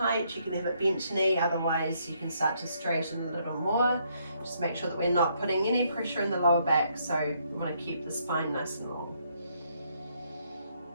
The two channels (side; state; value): both; inverted; correlation -0.72